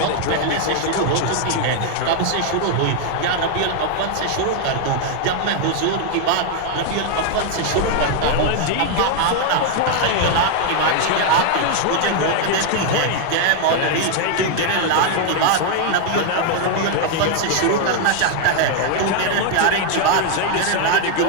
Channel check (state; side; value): different; both; correlation 0.00